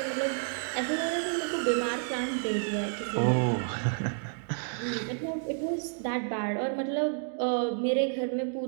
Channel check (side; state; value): left; silent; 58 dB below the other